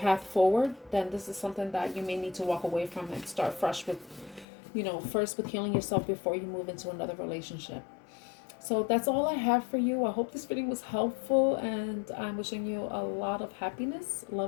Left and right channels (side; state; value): right; drops out; at 4.5 s